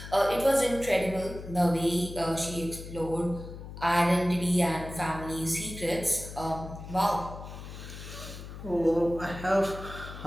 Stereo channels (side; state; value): left; noise; hum, 11 dB below the sound